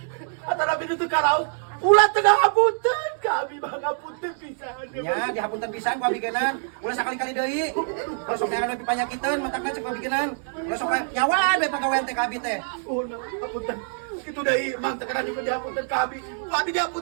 Atara binu teu karaos. Ulah tengah apunten. Kami mah ngapunten pisan. nya dihapunten pisan ku abigenan. Ulah sakali-kali deui. Ulah sok neangan lebih panyakiteun matakna cek abigenan. Ulah sok nyawa bae pagawean teh ka abi teh. Oh, nah, apunten. Kitu deui, Mang, teu kana juga diapunten ka abi. Ku abi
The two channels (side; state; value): left; silent; digital silence